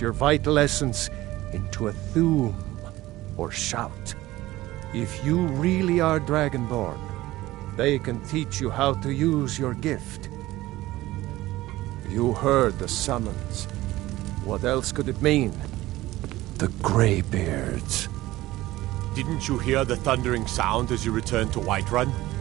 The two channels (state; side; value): quieter; left; 17.2 dB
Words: vital essence into a thum, or shout. If you really are Dragonborn, they can teach you how to use your gift. You heard the summons. What else could it mean? The Greybeards. Didn't you hear the thundering sound as you returned to Whiterun?